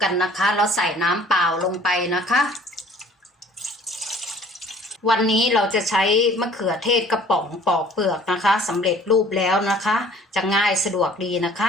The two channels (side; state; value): both; normal; correlation 0.52